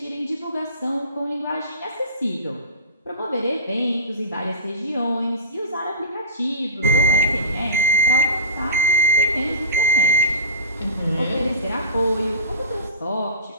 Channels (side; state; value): both; inverted; correlation -0.33